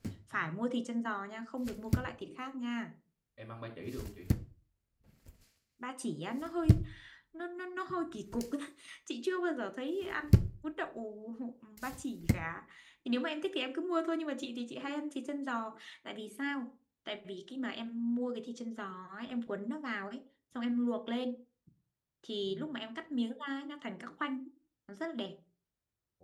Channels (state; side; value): identical; both; correlation 1.00